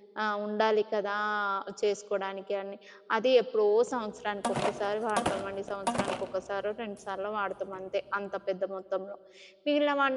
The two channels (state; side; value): identical; both; correlation 1.00